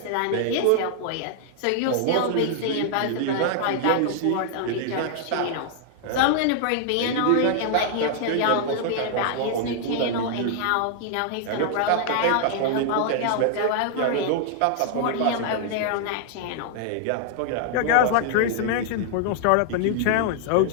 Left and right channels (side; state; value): both; different; correlation 0.00